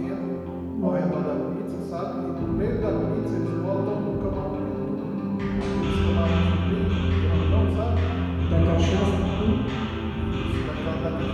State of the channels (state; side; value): identical; both; correlation 1.00